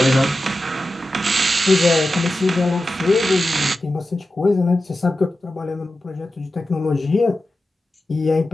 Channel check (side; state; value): both; normal; correlation 0.92